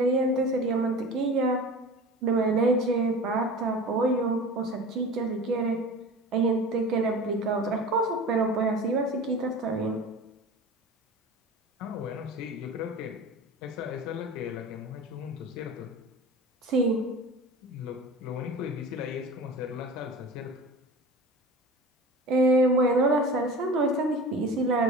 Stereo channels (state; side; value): normal; both; correlation 0.36